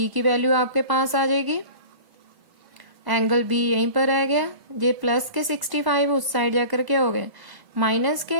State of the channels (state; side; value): late; left; 1.0 ms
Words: की वैल्यू आपके पास आ जाएगी। एंगल बी यहीं पर आ गया, ये प्लस के 65 उस साइड जाकर क्या हो गए माइनस